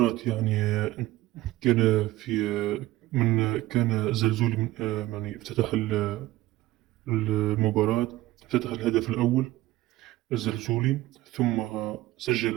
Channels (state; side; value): quieter; left; 16.8 dB